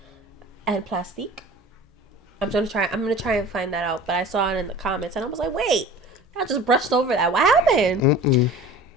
and Plastique? I'm gonna try and find that out. But I saw it in the comments and I was like, wait, I just brushed over that. What happened? Mm-mm.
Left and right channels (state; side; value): normal; both; correlation 0.40